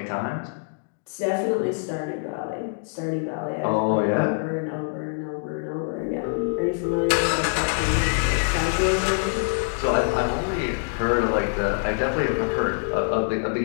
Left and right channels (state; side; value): silent; right; digital silence